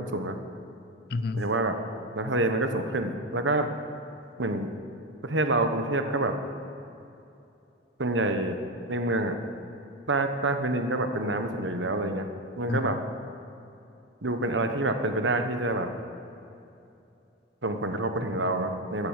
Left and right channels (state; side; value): normal; both; correlation 0.11